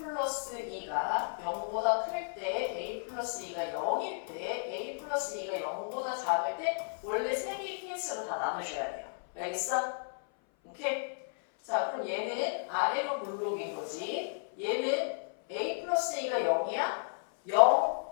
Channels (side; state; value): right; silent; 56 dB below the other